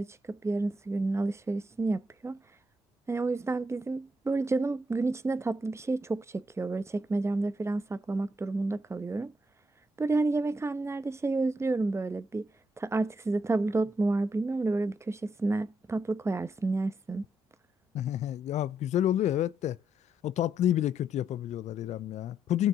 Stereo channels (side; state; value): both; normal; correlation 0.78